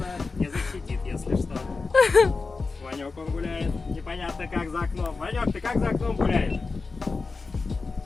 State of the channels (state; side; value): quieter; right; 4.2 dB